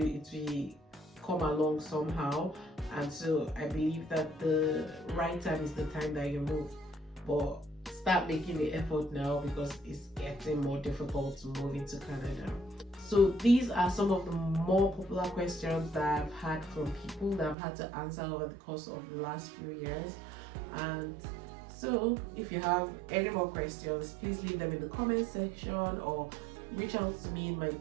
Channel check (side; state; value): left; drops out; at 17.6 s